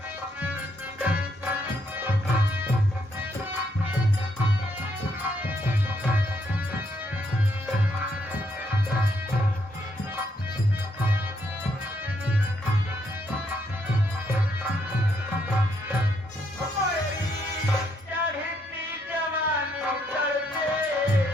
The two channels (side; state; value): both; normal; correlation 0.74